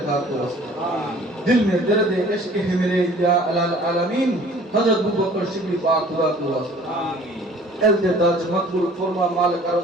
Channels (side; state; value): both; normal; correlation 0.51